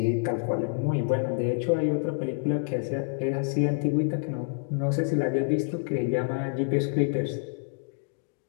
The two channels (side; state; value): right; silent; digital silence